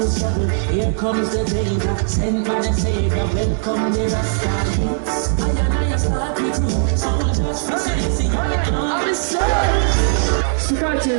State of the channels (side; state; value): left; silent; digital silence